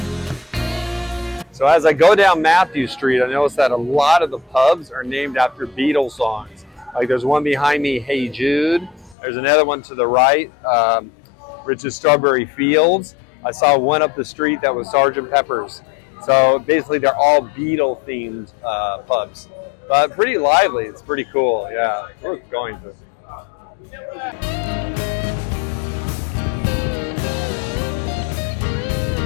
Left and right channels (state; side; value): drops out; right; at 9.2 s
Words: So as I go down Mathew Street, I notice that a lot of the pubs are named after Beatles songs. Like there's one behind me, Hey Jude. There's another one to the right, Rich's Strawberry Fields. I saw one up the street that was Sgt. Pepper's. So basically they're all Beatle themed pubs. But pretty lively, it's pretty cool, yeah. Worth going to.